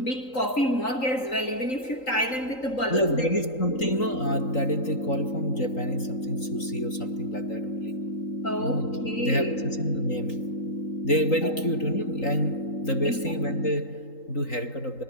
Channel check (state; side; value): late; right; 3.8 ms